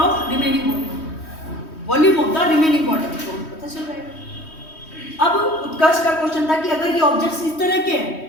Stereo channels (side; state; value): right; late; 3.1 ms